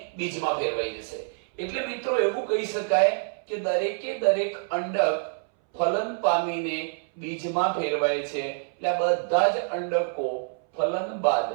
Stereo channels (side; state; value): left; silent; 60 dB below the other